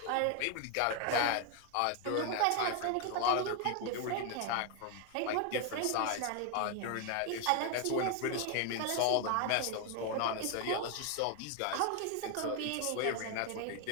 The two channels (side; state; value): both; different; correlation 0.01